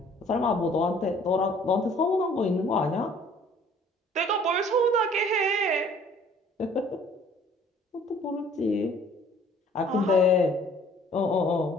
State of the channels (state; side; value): normal; both; correlation 0.55